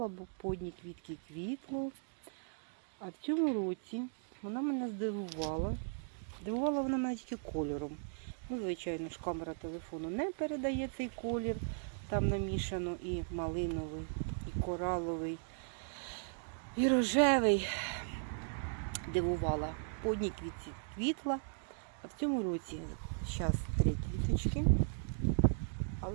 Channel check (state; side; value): silent; left; digital silence